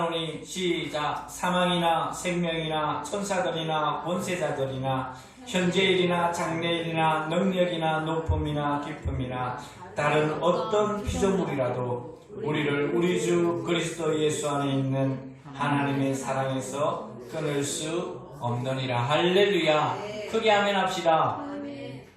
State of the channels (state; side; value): identical; both; correlation 1.00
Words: 시작. 사망이나 생명이나 천사들이나 권세자들이나 현재일이나 장래일이나 능력이나 높음이나 깊음이나 다른 어떤 피조물이라도 우리를 우리 주 그리스도 예수 안에 있는 하나님의 사랑에서 끊을 수 없느니라. 할렐루야. 크게 아멘 합시다.